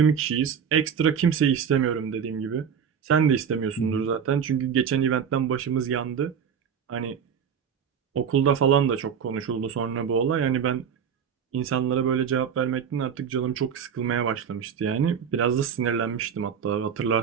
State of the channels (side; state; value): left; quieter; 7.4 dB